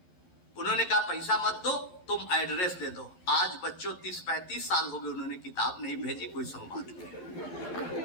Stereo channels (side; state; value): right; late; 11 ms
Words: उन्होंने कहा पैसा मत दो, तुम एड्रेस दे दो। आज बच्चों 30-35 साल हो गए, उन्होंने किताब नहीं भेजी, कोई संवाद नहीं।